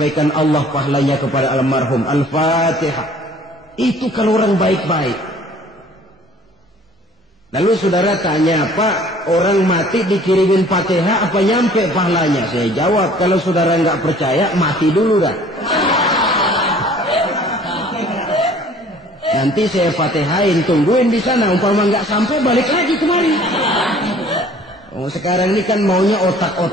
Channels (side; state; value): both; normal; correlation 0.53